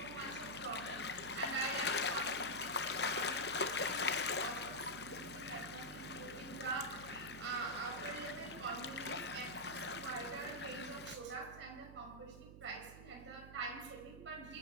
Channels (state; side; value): noise; right; hum, 14 dB below the sound